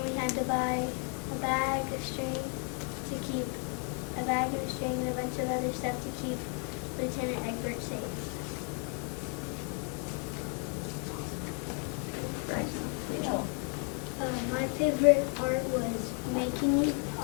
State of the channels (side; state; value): right; quieter; 35.4 dB